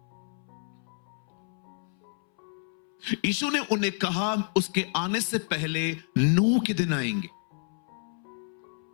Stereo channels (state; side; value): silent; right; 58 dB below the other